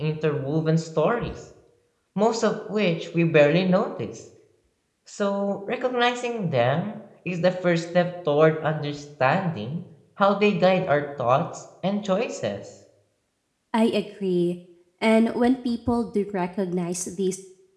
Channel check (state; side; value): identical; both; correlation 1.00